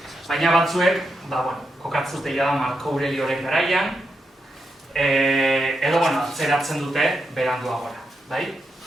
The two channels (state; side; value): normal; both; correlation 0.85